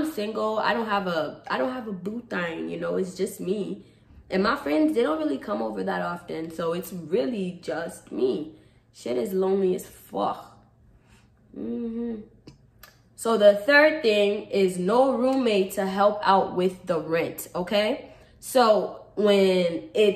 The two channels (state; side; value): identical; both; correlation 1.00